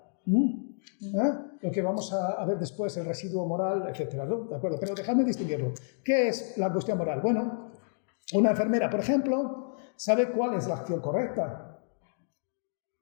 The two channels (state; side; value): silent; right; digital silence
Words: lo que vamos a ver después, el residuo moral, etc., ¿no? ¿De acuerdo? Pero dejadme distinguirlo. ¿Qué es la angustia moral? Bueno, una enfermera, por ejemplo, sabe cuál es la acción correcta,